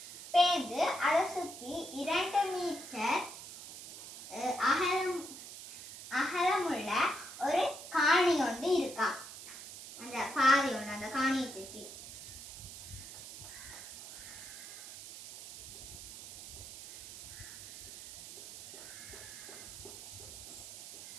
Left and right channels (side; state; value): right; noise; hiss, 12 dB below the sound